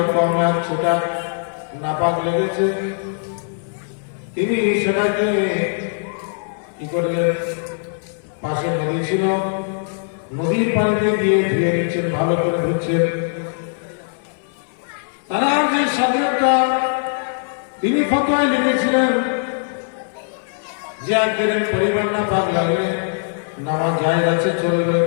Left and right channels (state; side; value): silent; right; 65 dB below the other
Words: কম এক সেটা নাপাক লেগেছে। তিনি সেটাকে কি করলেন, পাশে নদী ছিল, নদীর পানিতে গিয়ে ধুয়ে নিচ্ছেন, ভালো করে ধুচ্ছেন। তারা যে সাধকটা তিনি ফতোয়ায় লিখেছিলেন যে একদিনের পরিবার নাপাক লাগলে নামাজ জায়েজ আছে, চলবে।